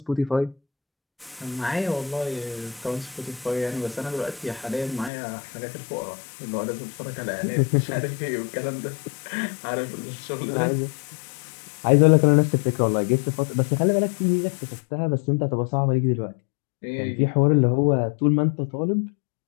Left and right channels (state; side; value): drops out; right; at 5.1 s